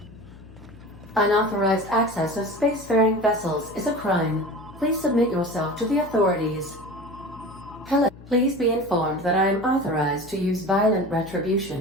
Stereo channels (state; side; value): noise; left; hum, 20 dB below the sound